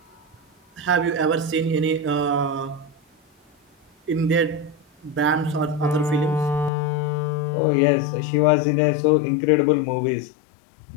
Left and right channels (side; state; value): right; drops out; at 6.7 s